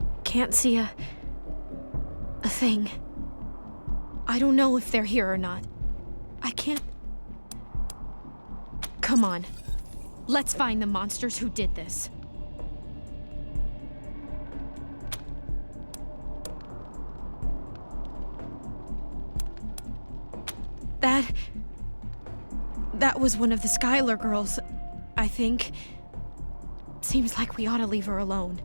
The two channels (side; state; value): both; inverted; correlation -1.00